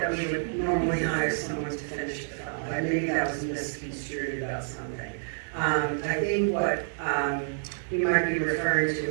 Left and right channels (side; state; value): left; silent; 55 dB below the other